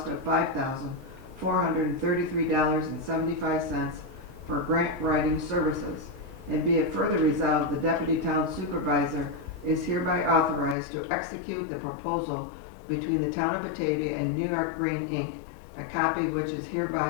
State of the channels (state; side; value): drops out; right; at 10.8 s